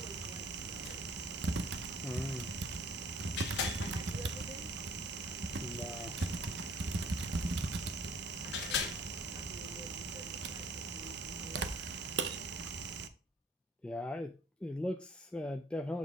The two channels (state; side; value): normal; both; correlation 0.56